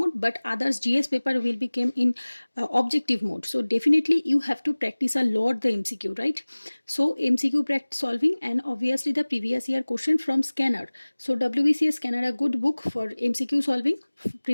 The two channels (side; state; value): both; inverted; correlation -1.00